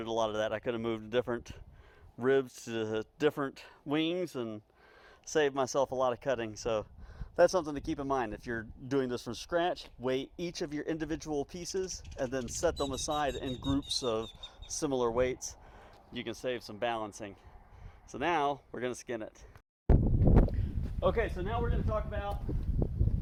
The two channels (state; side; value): identical; both; correlation 1.00